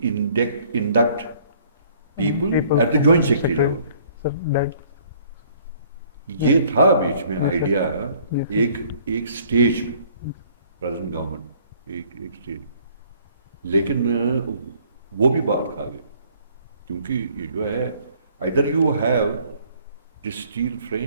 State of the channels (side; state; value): both; inverted; correlation -0.59